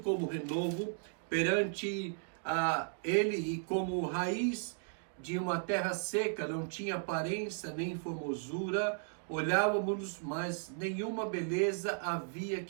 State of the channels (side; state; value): left; silent; digital silence